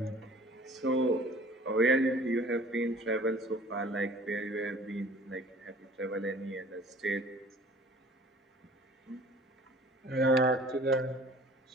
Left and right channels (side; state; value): both; normal; correlation 0.48